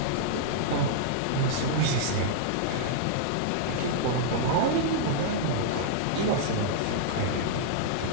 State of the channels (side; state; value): both; different; correlation -0.02